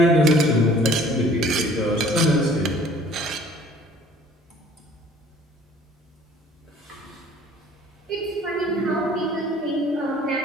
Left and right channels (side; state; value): both; normal; correlation 0.53